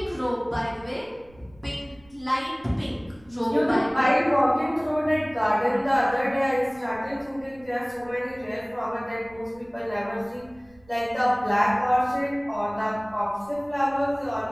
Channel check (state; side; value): noise; right; rumble, 27 dB below the sound